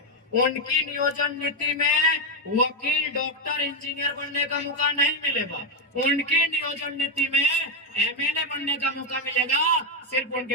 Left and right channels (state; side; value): normal; both; correlation 0.05